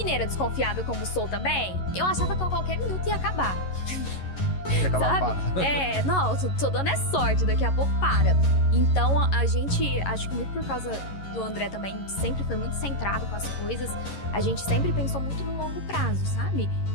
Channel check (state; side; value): late; right; 11 ms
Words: desconfiada como sou também, eu achava que a qualquer minuto ia acabar. Sabe? Não, tô dando sorte, daqui a pouco para. Então a gente, acho que muito por causa do André também, sempre foi muito centrado com as coisas, a gente sempre pensou muito no longo prazo, sabe?